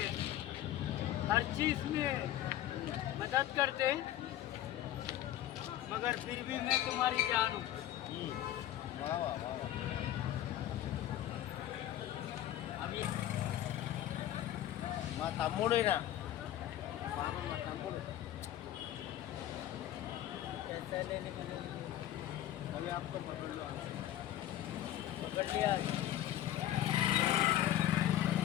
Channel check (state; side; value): quieter; right; 12.8 dB